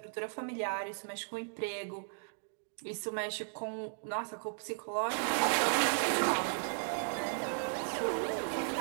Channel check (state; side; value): silent; left; digital silence